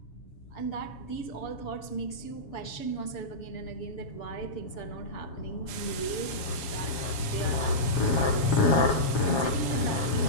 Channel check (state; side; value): late; right; 7.1 ms